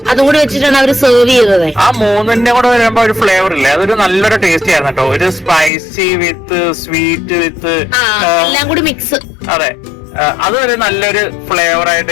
അതും കൂടി വെച്ചിട്ടാണ് അവര് സെർവ് ചെയ്തത്. ആ മൂന്നിന്റെ കൂടെ വരുമ്പോ ഒരു ഫ്ലേവർ ഇല്ലേ, അതൊരു നല്ലൊരു ടേസ്റ്റ് ആയിരുന്നു കേട്ടോ. ഒരു സ്പൈസി വിത്ത് സ്വീറ്റ് വിത്ത് എല്ലാം കൂടി മിക്സ്. അതെ, അതൊരു നല്ലൊരു ഫ്ലേവർ ആയിട്ട്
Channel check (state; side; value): drops out; right; at 5.7 s